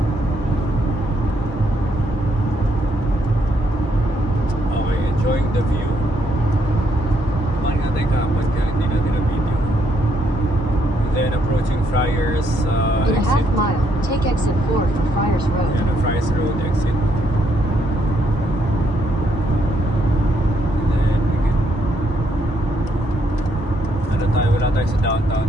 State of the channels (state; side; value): normal; both; correlation 0.74